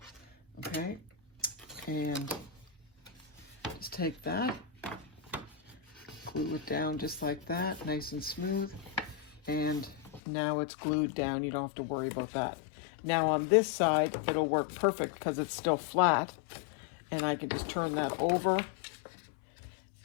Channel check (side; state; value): right; drops out; at 10.2 s